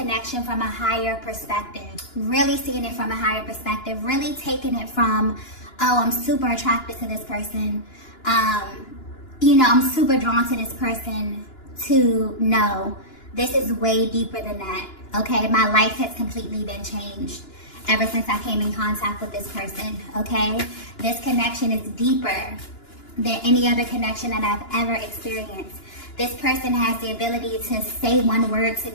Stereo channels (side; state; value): right; late; 2.9 ms